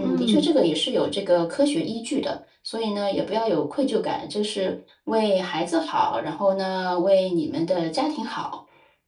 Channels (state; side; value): identical; both; correlation 1.00